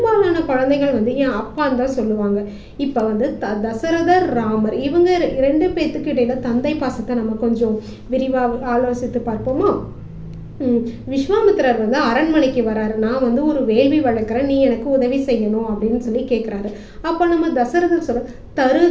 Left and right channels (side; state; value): both; identical; correlation 1.00